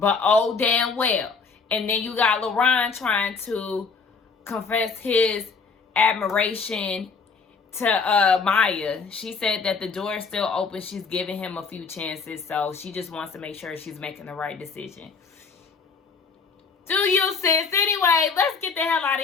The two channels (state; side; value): quieter; right; 5.0 dB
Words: oh, damn well. And then you got LaRon trying to confess his admiration to Maya. She said that the door is still open. She's giving him a few chances. So she just wants to make sure she's making the right decision. Do you, sis? Anyway, let's get the hell out